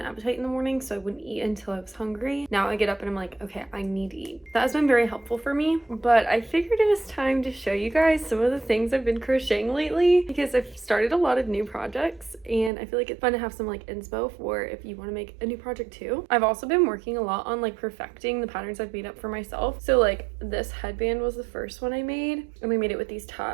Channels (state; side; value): drops out; left; at 12.7 s